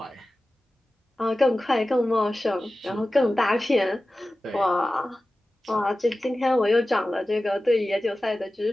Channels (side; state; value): both; normal; correlation 0.95